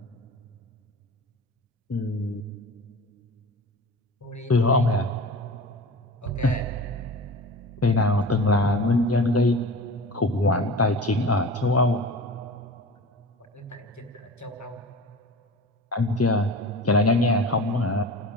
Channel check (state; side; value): normal; both; correlation 0.35